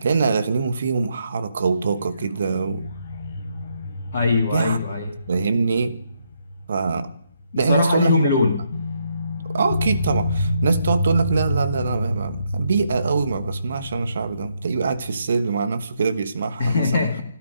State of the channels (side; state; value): both; inverted; correlation -0.76